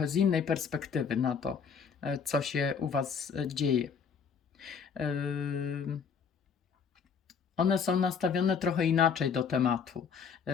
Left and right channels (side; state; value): right; quieter; 6.4 dB